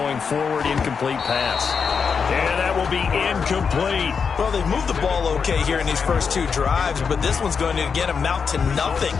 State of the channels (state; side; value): quieter; right; 5.9 dB